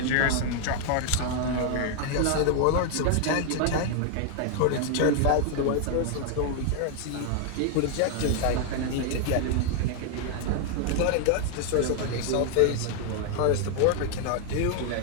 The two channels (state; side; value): different; both; correlation 0.00